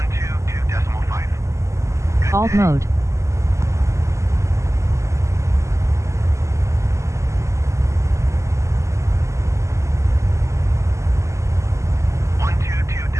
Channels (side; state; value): left; late; 0.14 ms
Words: Good Alt day. mode.